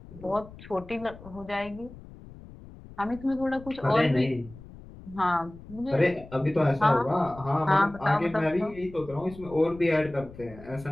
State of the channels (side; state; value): left; noise; rumble, 18 dB below the sound